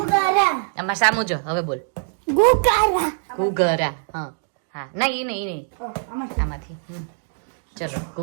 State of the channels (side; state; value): left; silent; 64 dB below the other